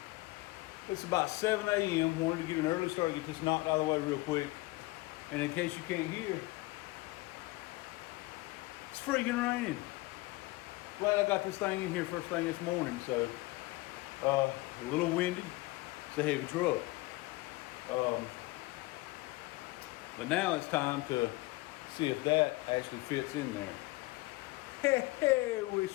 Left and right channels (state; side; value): quieter; right; 21.3 dB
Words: It's about 7 a.m. Wanted to get an early start, get this knocked out of the way real quick. And in case you can't hear, it's freaking raining. Glad I got this thing in here first thing this morning. So, a little windy. It's a heavy truck. But now it's time to see if that actually fits in there. Hey, wish